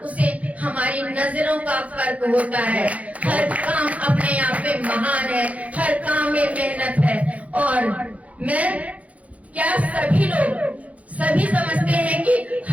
उसे हमारी नजरों का फर्क होता है। हर काम अपने आप में महान है, हर काम में मेहनत है। और मैं क्या सभी लोग सभी समझते हैं कि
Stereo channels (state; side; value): late; left; 0.067 ms